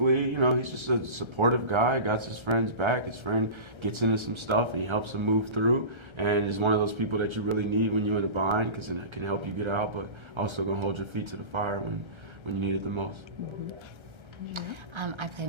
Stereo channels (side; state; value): left; late; 1.3 ms